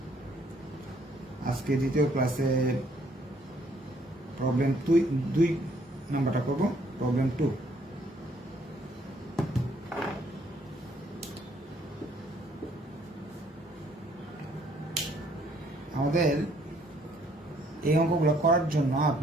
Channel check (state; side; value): normal; both; correlation 0.65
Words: আজকে দ্বিতীয় ক্লাসে প্রবলেম 2 নাম্বারটা করব, প্রবলেম 2। আমাদের এই অঙ্কগুলো করার জন্য